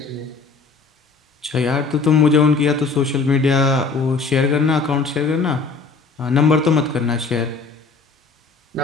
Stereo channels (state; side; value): quieter; right; 4.4 dB